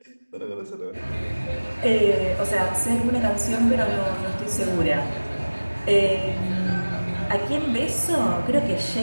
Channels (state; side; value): inverted; both; correlation -1.00